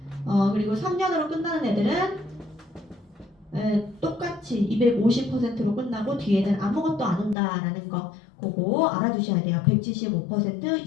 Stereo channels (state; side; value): drops out; right; at 7.4 s